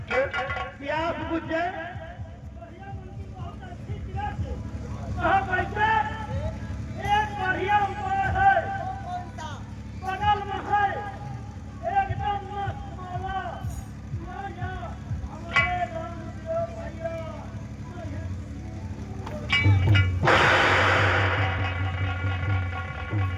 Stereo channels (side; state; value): both; identical; correlation 1.00